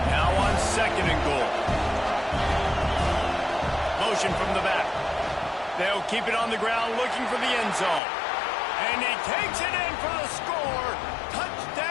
Now on second and goal. Motion from the back. They'll keep it on the ground looking for the end zone. And he takes it in for the score.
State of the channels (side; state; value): right; drops out; at 8.0 s